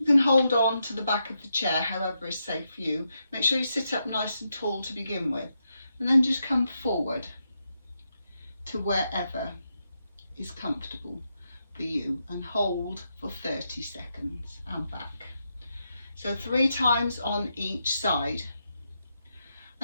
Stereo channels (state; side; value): inverted; both; correlation -0.84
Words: you can hold on to the back of the chair however is safe for you. Make sure you sit up nice and tall to begin with, and then just come forward to wherever is comfortable for you and hold for 30 seconds and back. So 3 times on each side,